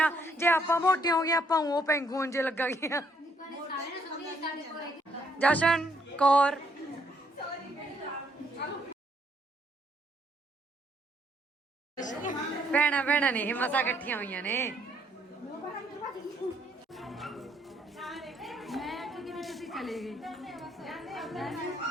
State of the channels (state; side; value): normal; both; correlation 0.69